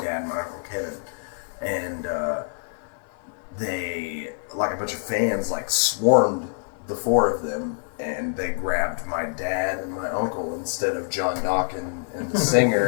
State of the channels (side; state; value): right; silent; 56 dB below the other